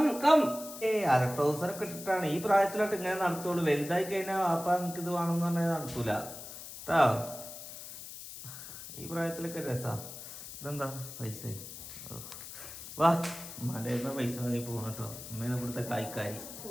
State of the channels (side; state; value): left; noise; hiss, 12 dB below the sound